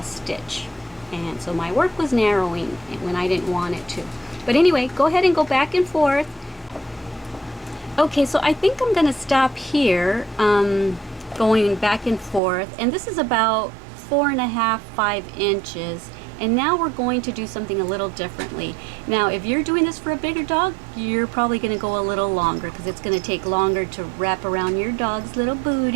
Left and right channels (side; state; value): left; drops out; at 12.4 s